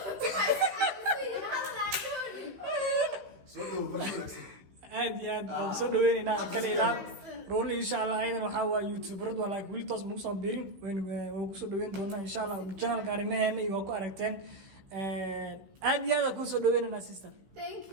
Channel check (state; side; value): late; left; 15 ms